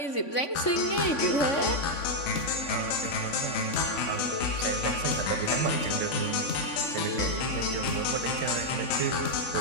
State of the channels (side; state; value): right; late; 3.5 ms